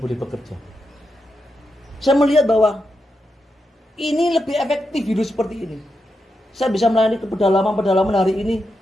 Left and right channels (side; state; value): both; normal; correlation 0.86